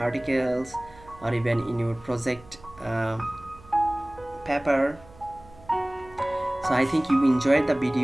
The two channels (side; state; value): right; noise; hum, 23 dB below the sound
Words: or even in your project paper. So I think you enjoyed the